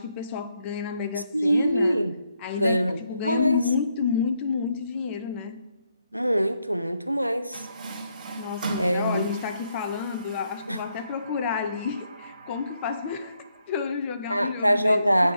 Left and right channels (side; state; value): both; inverted; correlation -0.77